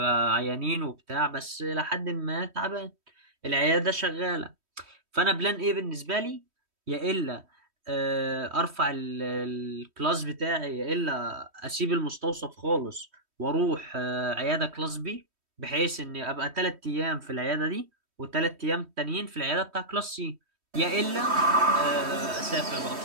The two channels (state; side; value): late; left; 3.1 ms